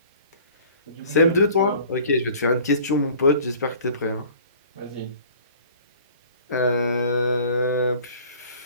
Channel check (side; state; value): both; inverted; correlation -0.49